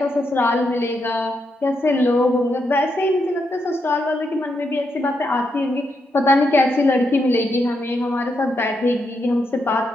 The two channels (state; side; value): normal; both; correlation 0.81